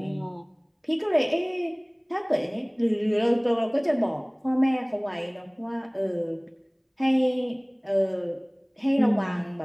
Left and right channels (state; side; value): identical; both; correlation 1.00